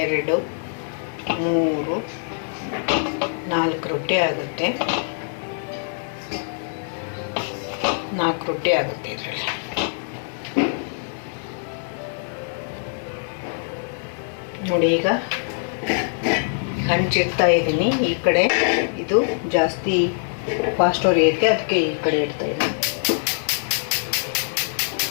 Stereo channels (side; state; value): right; silent; digital silence